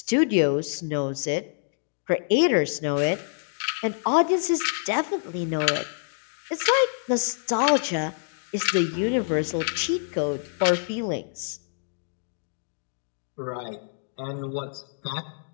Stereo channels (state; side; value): silent; right; digital silence